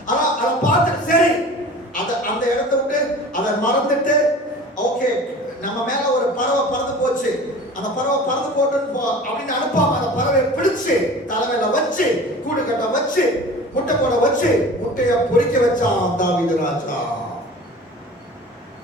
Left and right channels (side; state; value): both; normal; correlation 0.40